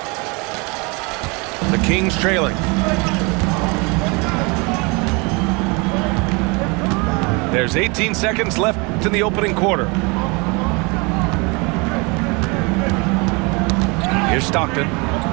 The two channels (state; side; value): quieter; left; 28.7 dB